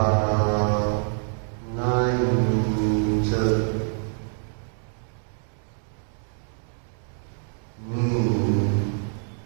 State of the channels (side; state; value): left; silent; 61 dB below the other